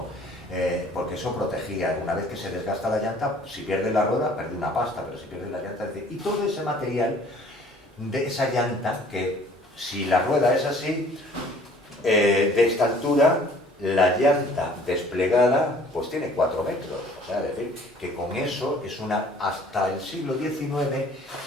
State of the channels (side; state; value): both; normal; correlation 0.54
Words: Porque eso protegía. Una vez que se desgasta la llanta, si pierde la rueda, pierde una pasta, pero si pierde la llanta... Y todo ese material de esa llanta, que si la rueda es así, de esta altura, la llanta desplegada pues tiene 4 metros. O sea, es decir, que con eso hasta el siglo XIX,